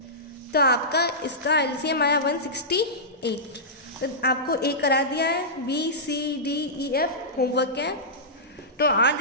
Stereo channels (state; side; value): normal; both; correlation -0.15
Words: तो आपका इसका एलसीएम आया 168। तो आपको ए करा दिया है, B C D E F homework है। तो आज